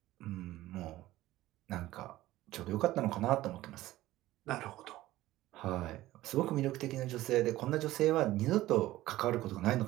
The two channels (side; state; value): left; quieter; 16.1 dB